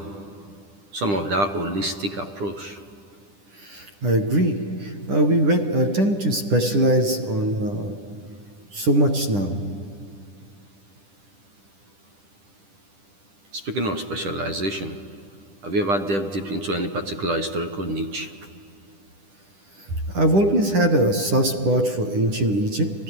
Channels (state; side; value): late; left; 10 ms